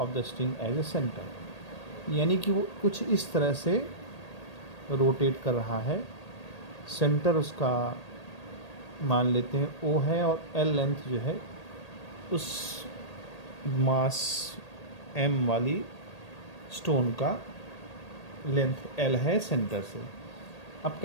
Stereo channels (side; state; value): right; late; 1.8 ms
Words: the string as a centre, यानी कि वो कुछ इस तरह से रोटेट कर रहा है। सेंटर उसका मान लेते हैं O है और L लेंथ जो है उस मास M वाली स्टोन का लेंथ L है सेंटर से। अब